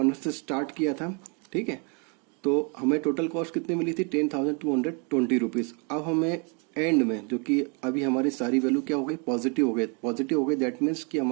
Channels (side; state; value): left; quieter; 35.6 dB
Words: से स्टार्ट किया था, ठीक है, तो हमें टोटल कॉस्ट कितनी मिली थी, 10,220 रुपीज। अब हमें एंड में, जो कि अभी हमारी सारी वैल्यू क्या हो गई, पॉजिटिव हो गई, दैट मीन्स कि